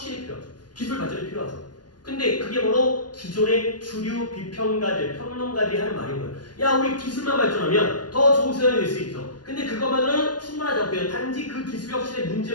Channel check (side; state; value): right; late; 0.70 ms